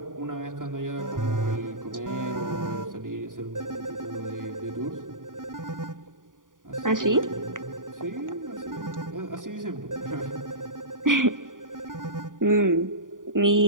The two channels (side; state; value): left; late; 0.89 ms